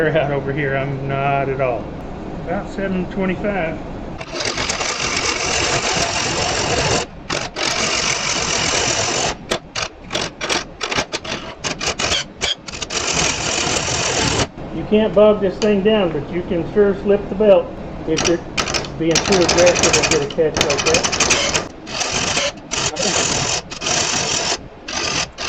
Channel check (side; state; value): both; identical; correlation 1.00